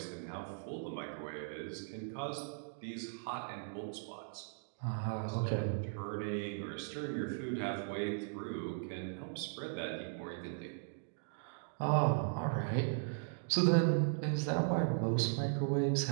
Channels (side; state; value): left; silent; digital silence